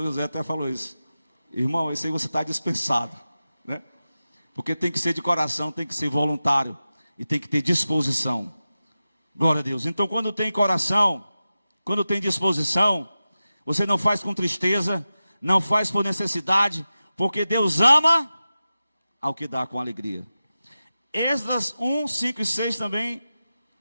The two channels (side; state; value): both; inverted; correlation -0.94